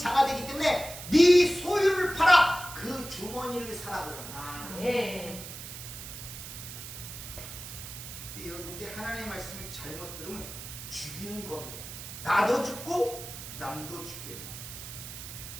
되기 때문에 네 소유를 팔아 그 주머니를 사라 그러는 거예요. 여러분들 하나님의 말씀을 잘못 들으면 죽이는 검이 돼요. 나도 죽고 남도 죽여요.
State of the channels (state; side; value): noise; right; hiss, 11 dB below the sound